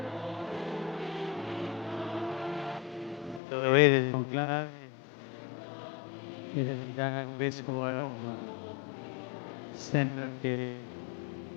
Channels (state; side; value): drops out; right; at 3.4 s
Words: Dovere conclave, il vescovo a Roma, sembra che